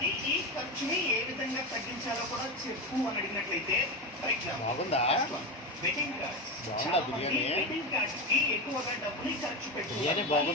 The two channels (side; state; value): both; normal; correlation 0.17